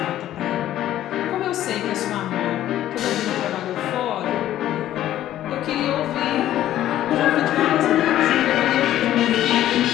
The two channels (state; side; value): quieter; right; 12.8 dB